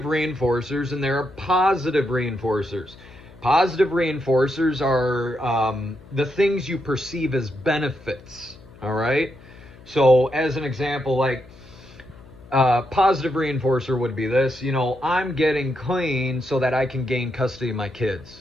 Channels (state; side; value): noise; left; hum, 22 dB below the sound